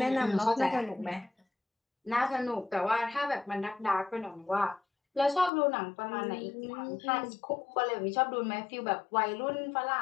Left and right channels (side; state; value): right; drops out; at 5.5 s